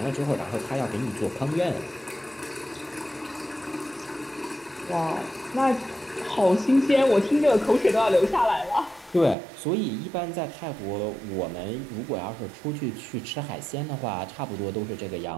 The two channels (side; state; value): left; drops out; at 9.3 s